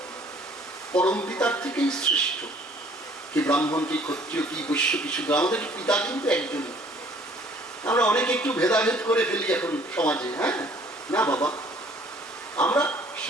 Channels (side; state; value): both; normal; correlation 0.57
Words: পরম পিতার থেকেই সৃষ্ট। কি ব্রাহ্মণ, কি ক্ষত্রিয়, কি বৈশ্য, কি শূদ্র, আমাদের পিতা কিন্তু একজনই। আমরা অনেকে একটু ভেদাভেদ করে ফেলি এখন সমাজে। হ্যাঁ না বাবা, আমরা